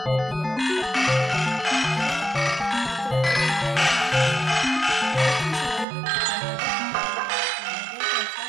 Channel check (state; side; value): drops out; left; at 5.9 s